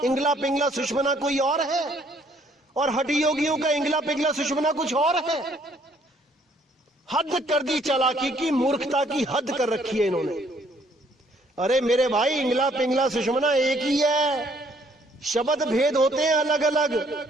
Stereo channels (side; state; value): both; normal; correlation 0.64